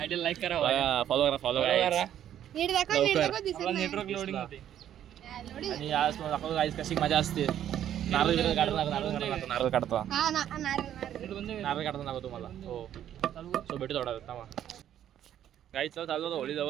आयडीला लाईक करा फॉलो करा नीट दाखव नीट दाखव दिसत नाही नेटवर्क लोडिंग होते लोडी आणि आज तुम्हाला दाखवतो गाईस कशी मजा असते नारळ काढतो हा नारळ नारळ नारळ काढतो दाखवतो तुम्हाला हो सो भेटू थोडा थांबा गाईच चालू होतं होळी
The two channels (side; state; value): left; quieter; 10.7 dB